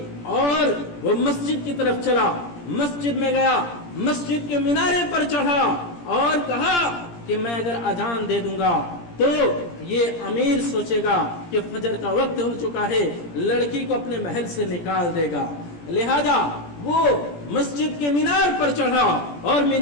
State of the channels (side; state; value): right; late; 17 ms